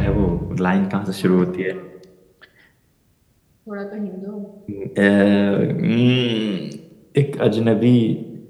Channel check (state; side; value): identical; both; correlation 1.00